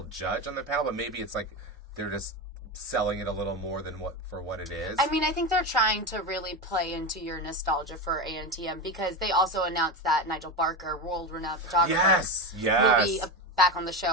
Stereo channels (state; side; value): normal; both; correlation 0.18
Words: judge on the panel, but maybe it's like they're just selling it a little more than what it is. I mean, I think they're trying to really play into your nostalgia for ANTM because they also announced that Nigel Barker, world-renowned photographer, will be back on the